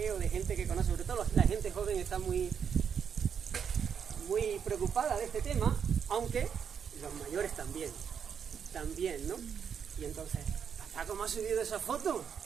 o de gente que conoce. Sobre todo la gente joven está muy preocupada de este tema, aunque los mayores también, ¿no? Y entonces, ¿cómo has subido esa foto?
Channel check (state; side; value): quieter; left; 7.4 dB